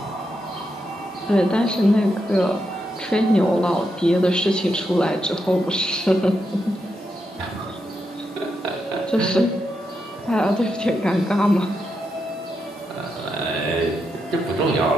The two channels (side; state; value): both; normal; correlation 0.83